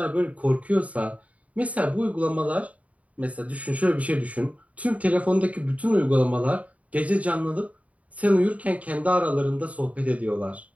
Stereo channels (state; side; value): late; left; 0.068 ms